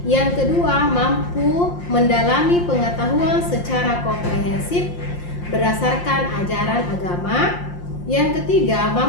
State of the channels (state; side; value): late; right; 5.7 ms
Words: Yang kedua, mampu mendalami pengetahuan secara komprehensif berdasarkan ajaran agama. Yang ketiga,